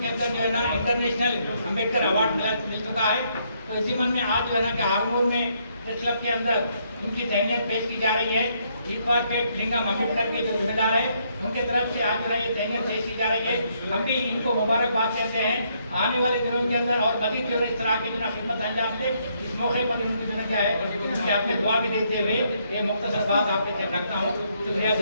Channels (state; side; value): inverted; both; correlation -0.73